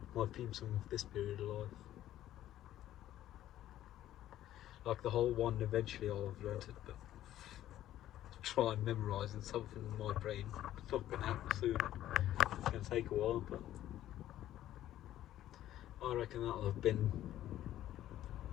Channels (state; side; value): quieter; right; 13.0 dB